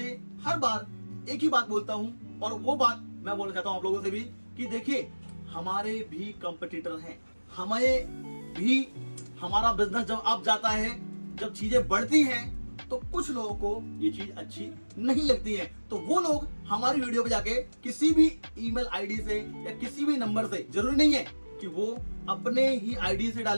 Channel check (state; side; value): inverted; both; correlation -1.00